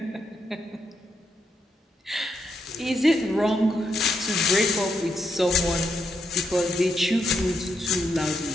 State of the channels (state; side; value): normal; both; correlation 0.80